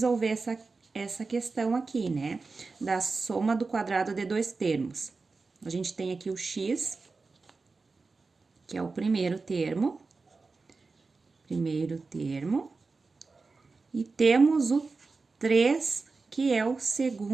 essa questão aqui, né? Da soma do quadrado de dois termos. A gente tem aqui o x, que é o primeiro termo. E temos o 3, que é o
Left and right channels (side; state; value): left; quieter; 4.1 dB